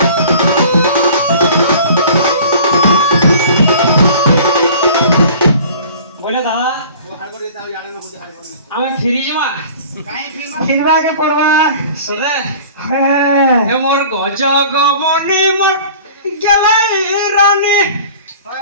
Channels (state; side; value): inverted; both; correlation -0.45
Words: বলে দাদা লাগে পড়বা সদে হ্যাঁ এ মোর গজ গমনি মোর গেলাই রানী